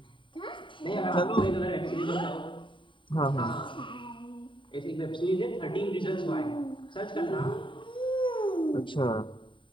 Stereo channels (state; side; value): late; right; 0.24 ms